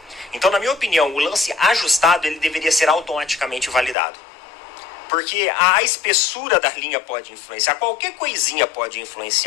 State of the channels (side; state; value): right; drops out; at 4.0 s